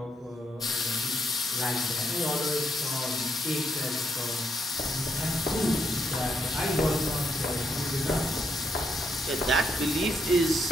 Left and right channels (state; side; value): normal; both; correlation 0.77